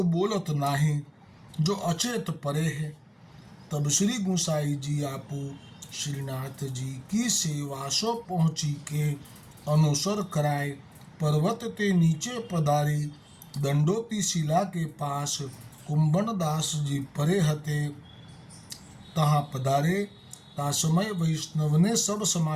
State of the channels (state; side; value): identical; both; correlation 1.00